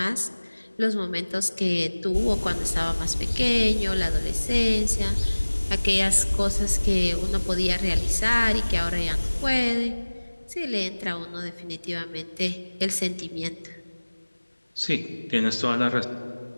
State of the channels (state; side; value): inverted; both; correlation -1.00